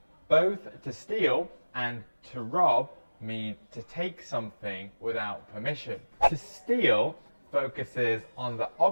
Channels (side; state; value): both; inverted; correlation -1.00